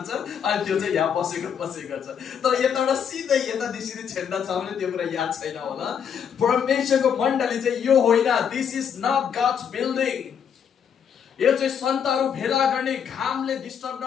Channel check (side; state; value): right; quieter; 7.8 dB